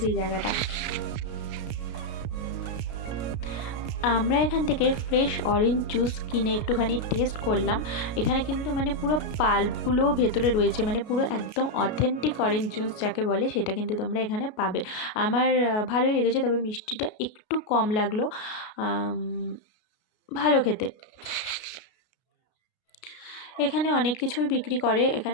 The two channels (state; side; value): late; right; 33 ms